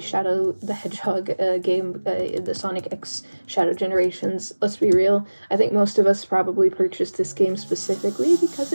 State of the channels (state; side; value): inverted; both; correlation -1.00